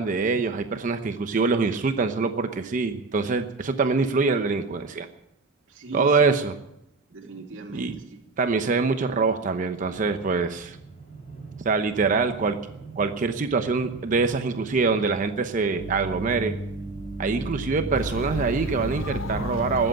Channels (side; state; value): left; quieter; 3.8 dB